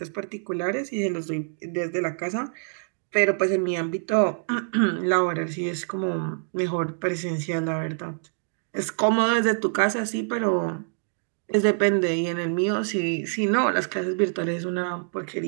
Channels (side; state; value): left; silent; 61 dB below the other